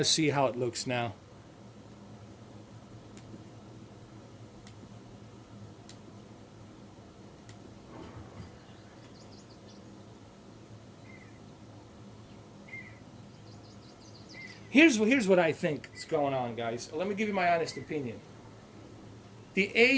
see how it looks now. Here's what I think is going on, guys. Let me give you my honest opinion. The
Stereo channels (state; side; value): identical; both; correlation 1.00